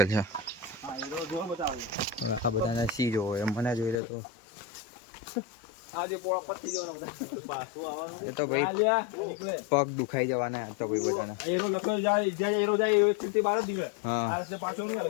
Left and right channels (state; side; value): drops out; right; at 4.0 s